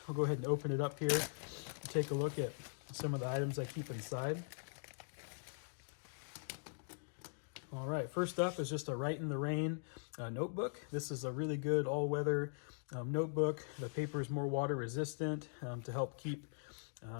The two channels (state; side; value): silent; right; digital silence